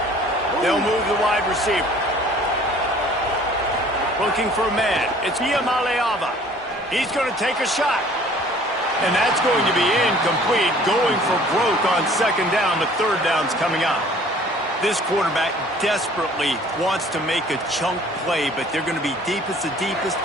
They'll move the wide receiver. Looking for a man. It's Iamaleava. He's going to take a shot. And that's going to be incomplete, going for broke on second down, but third down's coming up. This quarterback desperately wants to make a chunk play, but they're going to be deepest to deepest,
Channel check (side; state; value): both; normal; correlation 0.52